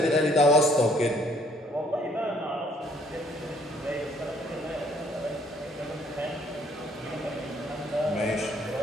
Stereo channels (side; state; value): both; normal; correlation 0.63